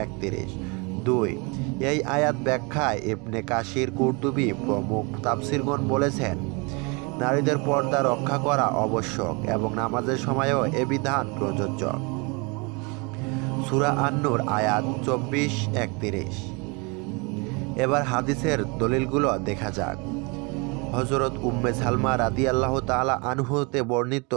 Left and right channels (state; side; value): quieter; left; 30.1 dB